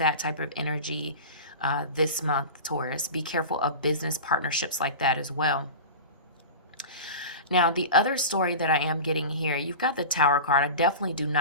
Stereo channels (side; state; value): both; inverted; correlation -0.31